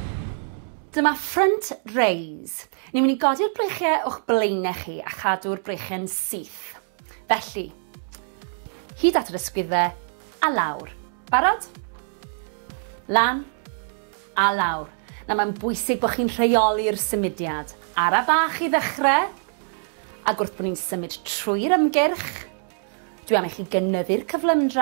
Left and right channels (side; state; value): left; silent; digital silence